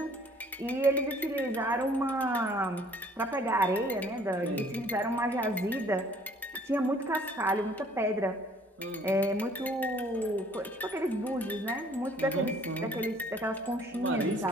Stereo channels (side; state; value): both; normal; correlation 0.58